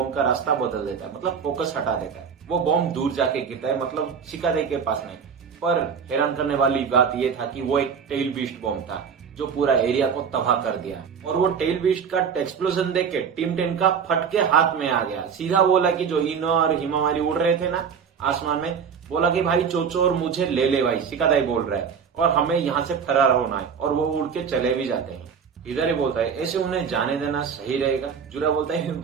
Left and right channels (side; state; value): left; quieter; 6.7 dB